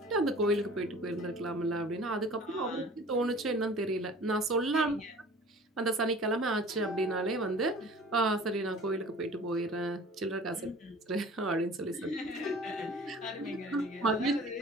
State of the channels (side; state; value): both; normal; correlation 0.45